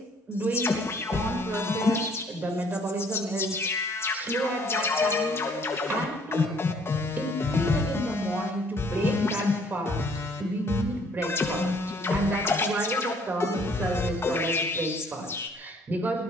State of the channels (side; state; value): both; normal; correlation 0.60